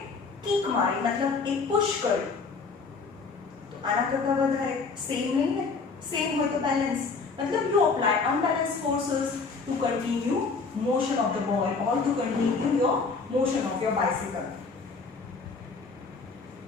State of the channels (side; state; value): right; quieter; 4.6 dB